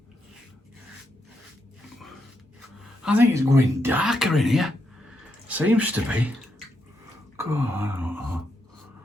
I think it's going darker in here. Seems to be. God, I don't know.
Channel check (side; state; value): both; normal; correlation 0.81